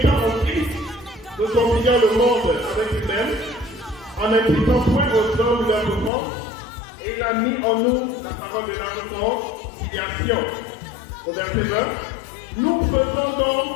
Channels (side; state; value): right; drops out; at 6.1 s